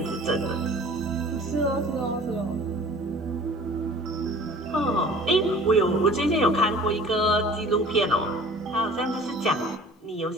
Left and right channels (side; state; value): both; normal; correlation 0.46